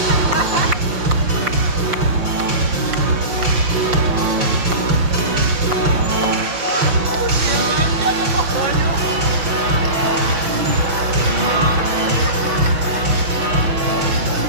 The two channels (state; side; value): late; left; 6.1 ms